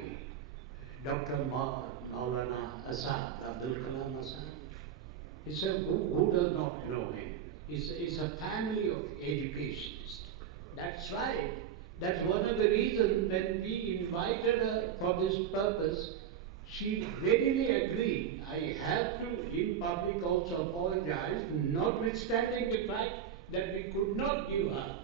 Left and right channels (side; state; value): left; quieter; 9.0 dB